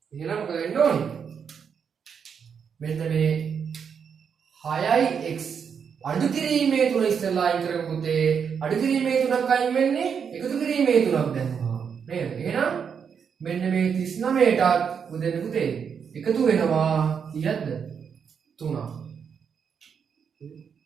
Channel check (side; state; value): left; quieter; 6.9 dB